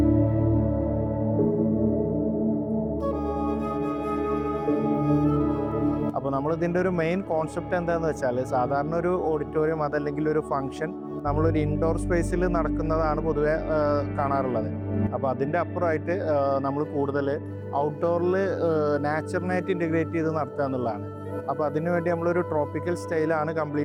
അപ്പോൾ നമ്മളിതിൻ്റെ ഒരു മെയിൻ കോൺസെപ്റ്റ് എന്താണെന്ന് വെച്ചാൽ സാധാരണ ഒരു ഓഡിറ്റോറിയം അതല്ലെങ്കിൽ ഒരു ഫംഗ്ഷൻ നമ്മളൊരു ഇൻഡോർ സ്പേസിൽ നടക്കുന്നതാണ് പൊതുവെ കാണാറുള്ളത്. അപ്പോൾ അതിൻ്റെ അപ്പുറമായിട്ട് നമ്മൾ കൂടുതൽ ഔട്ട്ഡോറിൽ നാച്ചുറലായിട്ട് ഇൻറ്റഗ്രേറ്റ് ചെയ്ത് നടത്തുക എന്നുള്ളതാണ്. അപ്പോൾ അതിനുവേണ്ടി നമ്മളൊരു ട്രോപ്പിക്കൽ സ്റ്റൈലാണ്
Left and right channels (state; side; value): identical; both; correlation 1.00